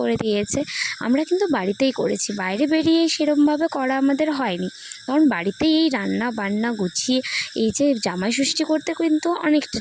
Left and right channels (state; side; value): identical; both; correlation 1.00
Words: দিয়েছে। আমরা কিন্তু বাড়িতেই করেছি, বাইরে বেরিয়ে সেরমভাবে করা আমাদের হয়নি, কারণ বাড়িতেই এই রান্না বান্না গুছিয়ে এই যে জামাই ষষ্ঠী করতে কিন্তু অনেকটা